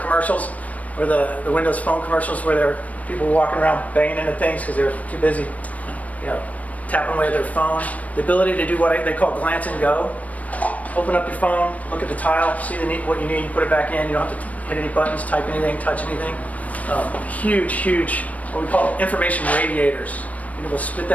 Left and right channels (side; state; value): right; late; 0.069 ms